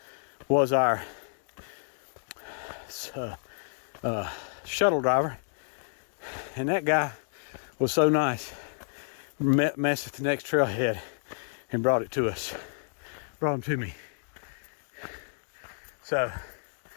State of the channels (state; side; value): silent; right; digital silence